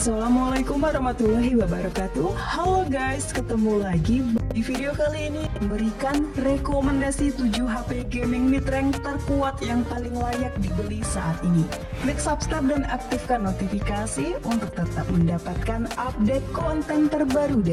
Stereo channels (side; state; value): both; identical; correlation 1.00